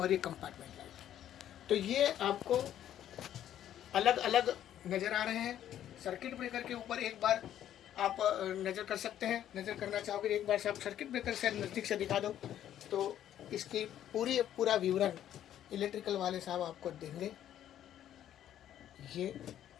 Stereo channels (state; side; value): quieter; right; 11.1 dB